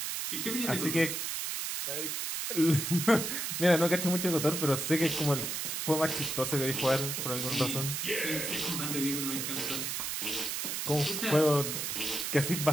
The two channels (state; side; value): noise; right; hiss, 2 dB below the sound